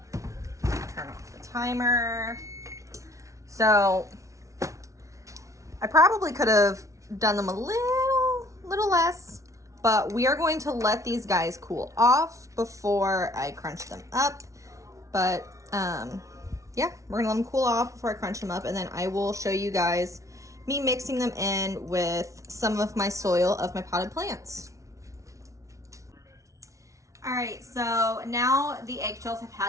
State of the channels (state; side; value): late; left; 0.15 ms